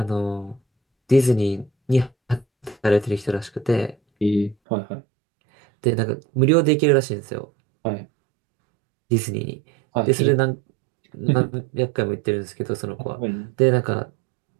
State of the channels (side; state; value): left; drops out; at 4.5 s